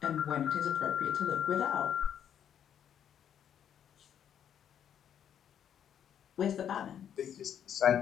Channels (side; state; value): right; quieter; 9.2 dB